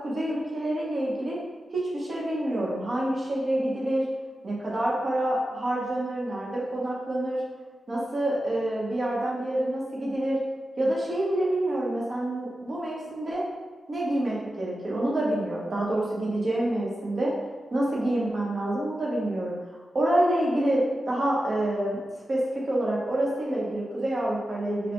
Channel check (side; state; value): both; normal; correlation 0.92